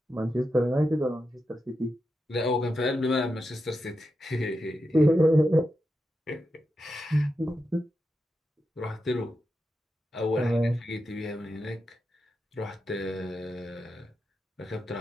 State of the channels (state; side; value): normal; both; correlation 0.88